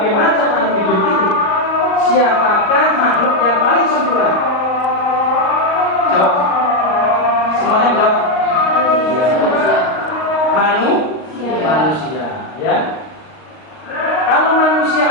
macam makhluk hidup itu, siapakah makhluk yang paling sempurna? Jawab. Semuanya jawab. Manusia, ya. Kalau manusia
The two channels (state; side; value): late; right; 38 ms